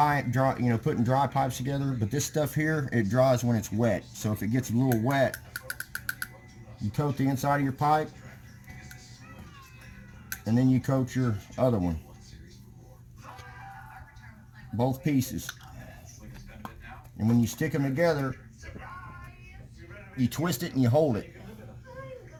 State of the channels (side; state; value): both; identical; correlation 1.00